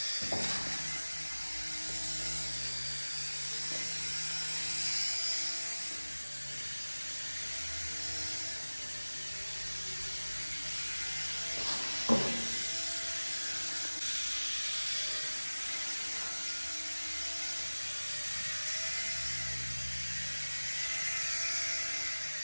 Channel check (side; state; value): both; inverted; correlation -1.00